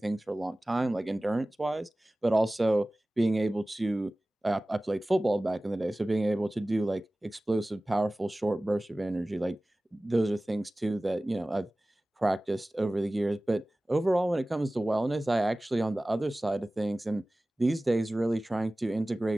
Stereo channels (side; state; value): both; normal; correlation 0.98